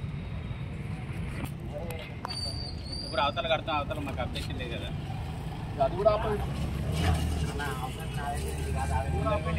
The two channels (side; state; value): both; identical; correlation 1.00